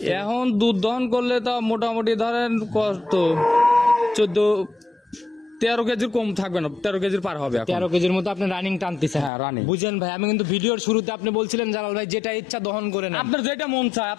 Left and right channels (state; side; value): drops out; right; at 9.3 s